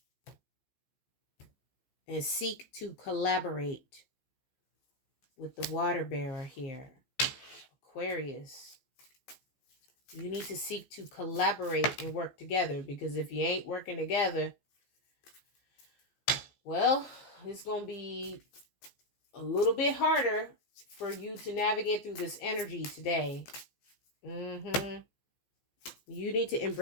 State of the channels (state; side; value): late; right; 14 ms